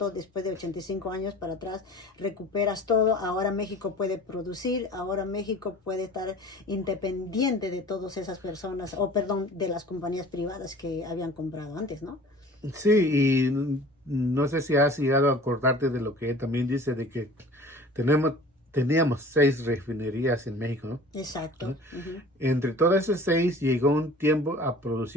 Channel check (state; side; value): normal; both; correlation 0.45